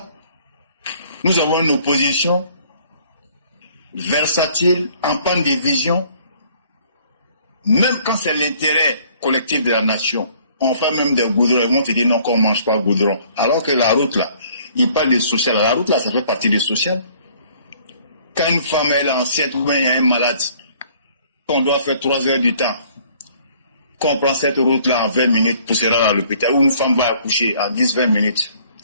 nous avons une opposition versatile, en panne de vision, même quand c'est l'intérêt collectif de la nation. On fait même des goudrons, ils vont te dire non, qu'on ne mange pas goudron. Alors que la route là, il parle de social. La route là, ça fait partie du social. Quand une femme est enceinte ou bien il y a un malade, qu'on doit faire 3 heures du temps, qu'on prend cette route là en 20 minutes pour se rendre à l'hôpital, ou une femme va accoucher en 10-20 minutes.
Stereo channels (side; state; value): both; inverted; correlation -0.59